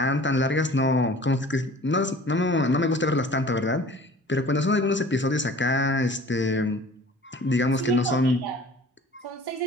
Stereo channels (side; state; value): both; normal; correlation 0.46